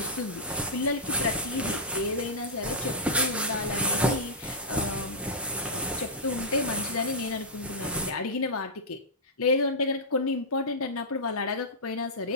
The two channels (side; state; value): both; normal; correlation -0.11